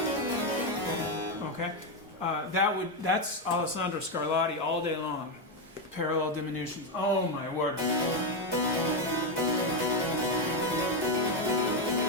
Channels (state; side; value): normal; both; correlation 0.06